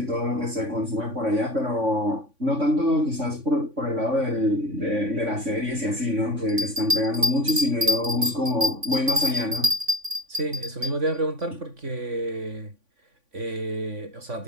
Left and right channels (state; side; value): late; left; 3.5 ms